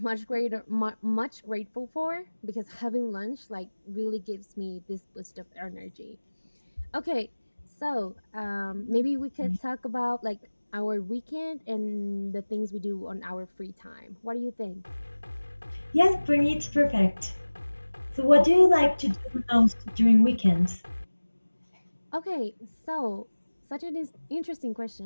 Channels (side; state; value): both; inverted; correlation -1.00